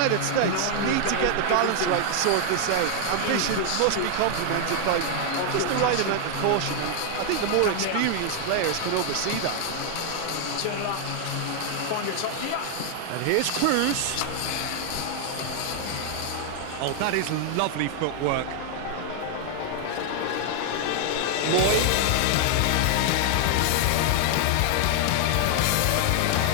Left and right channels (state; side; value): different; both; correlation 0.00